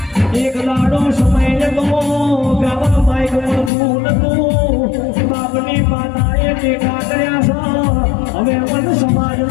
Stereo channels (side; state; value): right; drops out; at 3.7 s